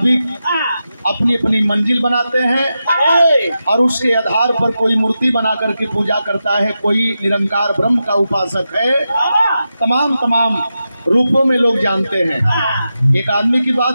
अपनी अपनी मंजिल बनाते हैं और उसके आधार पर कोई मूर्ति बना करके पूजा करता है, कोई निरंकार ब्रह्म का उपासक है। तमाम रूपों में लोग जानते हैं। एक आदमी की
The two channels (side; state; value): both; inverted; correlation -0.90